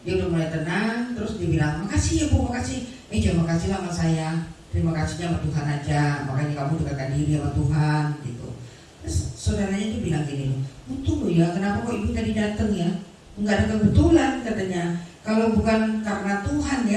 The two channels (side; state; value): both; identical; correlation 1.00